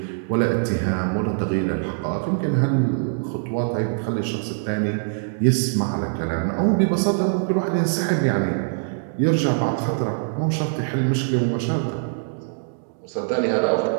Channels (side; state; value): left; silent; digital silence